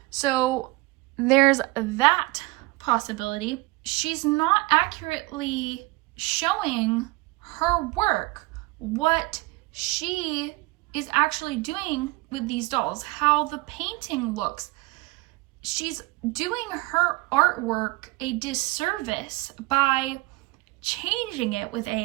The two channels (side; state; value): left; quieter; 22.8 dB